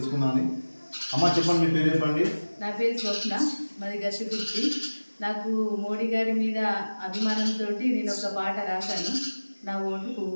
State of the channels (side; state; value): both; inverted; correlation -1.00